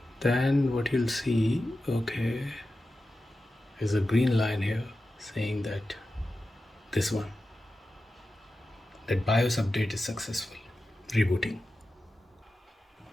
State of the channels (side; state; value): both; normal; correlation 0.93